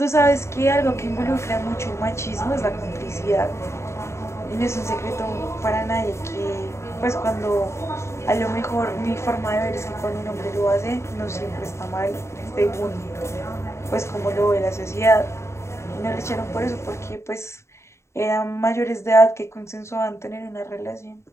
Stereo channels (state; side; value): late; right; 0.13 ms